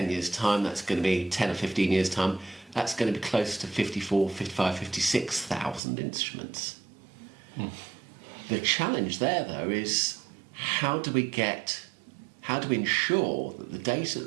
years' time, that's going to be 10 or 15 years' time, that's going to be close to 54, 55, 56,000 instruments. The challenge there, though, is how do we ensure that the data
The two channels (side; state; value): left; drops out; at 5.8 s